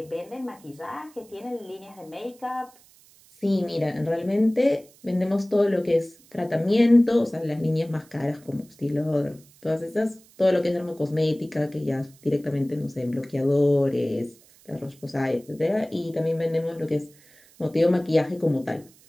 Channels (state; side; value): noise; right; hiss, 27 dB below the sound